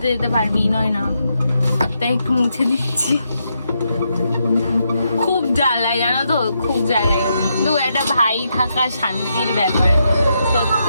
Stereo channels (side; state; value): both; inverted; correlation -0.81